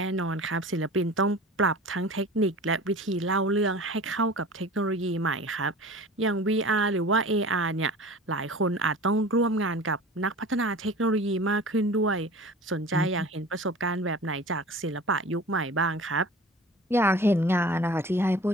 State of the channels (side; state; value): both; normal; correlation 0.40